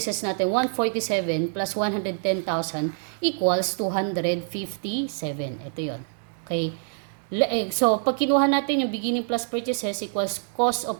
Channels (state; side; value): silent; left; digital silence